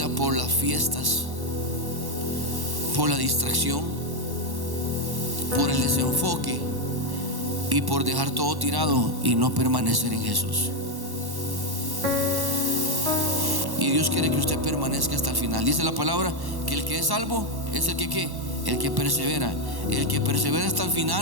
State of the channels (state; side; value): late; left; 1.1 ms